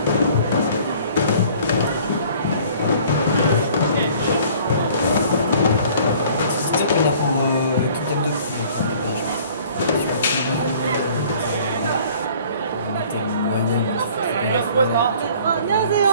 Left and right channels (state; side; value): inverted; both; correlation -0.52